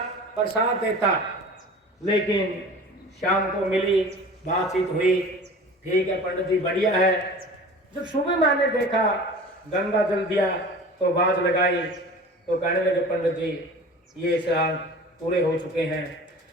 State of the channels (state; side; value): normal; both; correlation 0.39